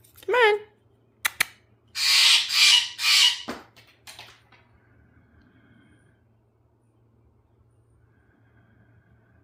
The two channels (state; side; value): identical; both; correlation 1.00